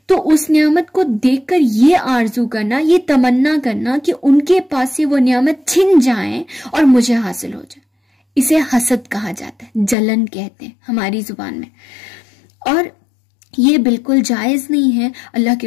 تو اس نعمت کو دیکھ کر یہ آرزو کرنا، یہ تمنا کرنا کہ ان کے پاس سے وہ نعمت چھن جائیں اور مجھے حاصل ہو جائے، اسے حسد کہا جاتا ہے، جلن کہتے ہیں ہماری زبان میں. اور یہ بالکل جائز نہیں ہے. اللہ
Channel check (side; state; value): right; drops out; at 10.0 s